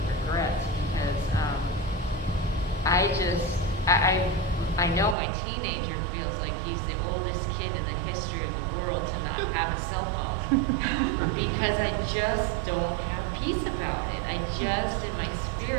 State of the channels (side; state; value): left; drops out; at 5.2 s